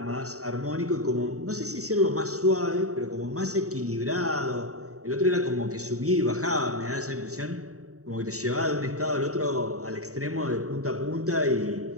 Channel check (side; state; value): left; late; 0.65 ms